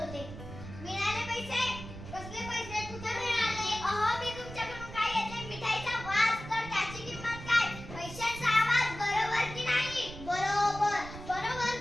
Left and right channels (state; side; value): noise; right; rumble, 12 dB below the sound